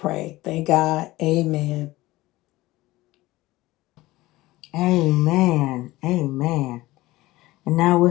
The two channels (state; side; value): quieter; right; 18.5 dB